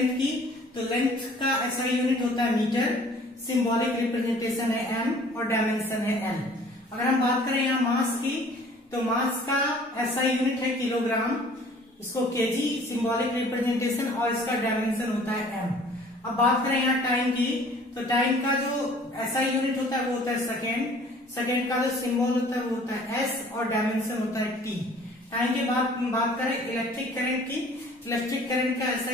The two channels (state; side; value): normal; both; correlation 0.52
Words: की तो लेंथ का एसआई यूनिट होता है मीटर, सिंबॉलिक रिप्रेजेंटेशन है एम और डायमेंशन है एल. अगर हम बात करें यहाँ मास की तो मास का एसआई यूनिट है किलोग्राम, इसको केजी सिंबॉलिक रिप्रेजेंटेशन और इसका डायमेंशन होता है एम. अब बात करें यहाँ टाइम की तो टाइम का जो एसआई यूनिट होता है वो होता है सेकेंड, सेकेंड का जो सिंबल होता है वो होता है एस और डायमेंशन होता है टी. टाइम के बाद बात करें इलेक्ट्रिक करंट की, इलेक्ट्रिक करंट का